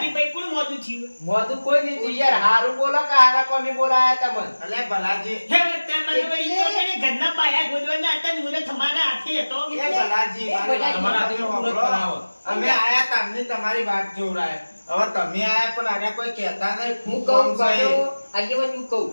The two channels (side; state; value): both; inverted; correlation -1.00